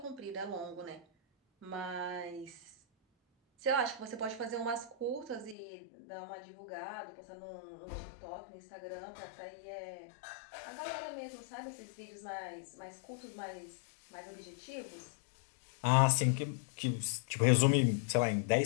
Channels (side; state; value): right; drops out; at 5.6 s